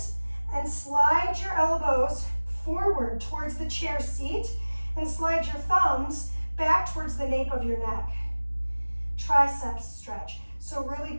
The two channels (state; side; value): inverted; both; correlation -1.00